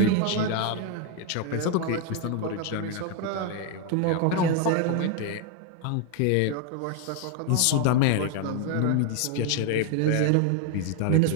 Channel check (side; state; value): both; different; correlation 0.01